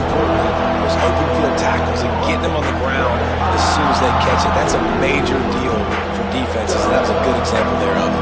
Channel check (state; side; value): identical; both; correlation 1.00